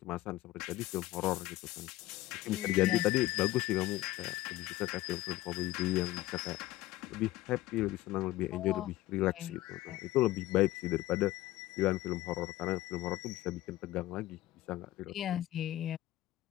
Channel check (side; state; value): right; quieter; 16.7 dB